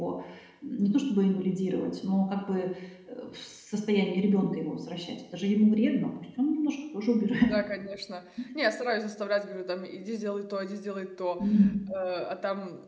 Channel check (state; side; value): identical; both; correlation 1.00